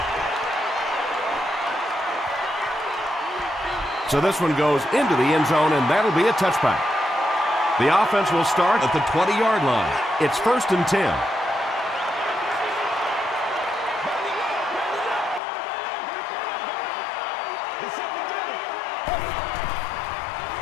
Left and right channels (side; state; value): right; drops out; at 15.4 s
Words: So this one goes into the end zone, and that'll be a touchback. The offense will start at the 20-yard line. It's 1st and 10.